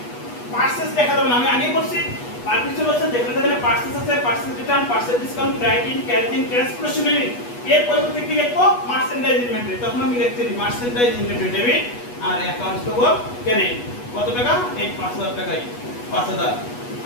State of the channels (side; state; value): right; late; 8.2 ms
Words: পার্সেস দেখা যাবে না। আমি আগেই বলছি পারপিসল হচ্ছে যেখানে যেখানে পার্সেস আছে, purchase return, purchase discount, credit, carrying, transportation এর পরিবর্তে কি লিখবো? Merchandise inventory. তখন আমি লিখছি মার্চেন্ডাইজ ইনভেন্টরি ডেবিট আর অ্যাকাউন্টস পেবল ক্রেডিট। কত টাকা? এই 5000 টাকাই, 5000।